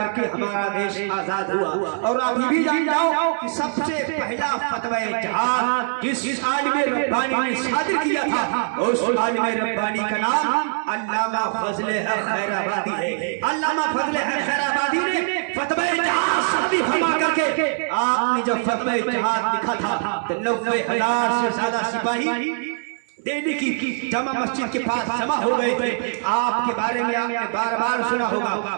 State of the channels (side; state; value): left; silent; 64 dB below the other